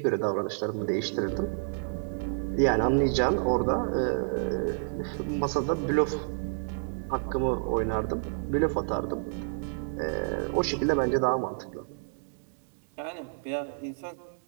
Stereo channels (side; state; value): left; silent; digital silence